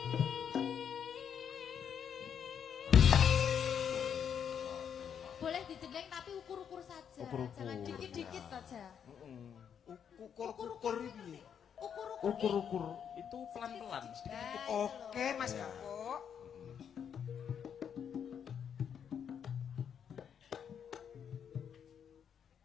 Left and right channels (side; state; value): right; quieter; 8.0 dB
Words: Boleh dijengleng tapi ukur-ukur saja. Jangan dikit-dikit saja. Ukur-ukur piye? Ukur-ukur itu pelan-pelan sedikit. Oke, Mas Gabok.